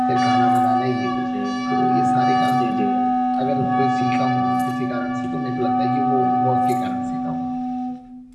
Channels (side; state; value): both; identical; correlation 1.00